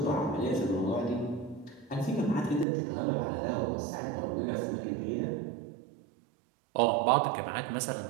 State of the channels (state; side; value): drops out; left; at 2.7 s